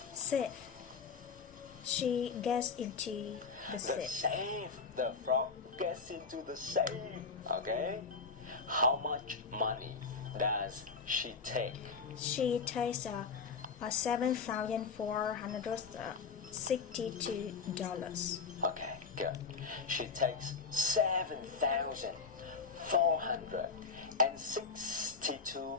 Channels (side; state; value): right; quieter; 5.1 dB